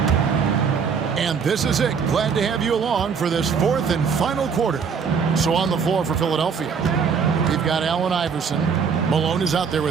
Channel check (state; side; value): quieter; left; 6.2 dB